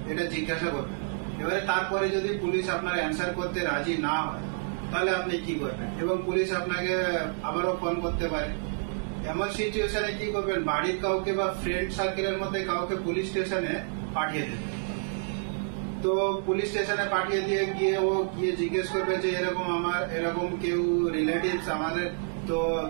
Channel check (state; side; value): silent; left; 59 dB below the other